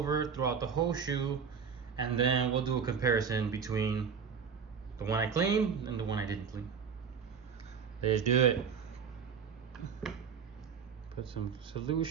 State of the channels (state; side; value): quieter; left; 6.5 dB